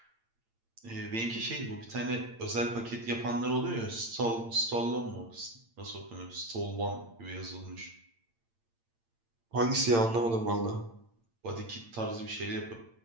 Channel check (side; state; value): left; late; 8.8 ms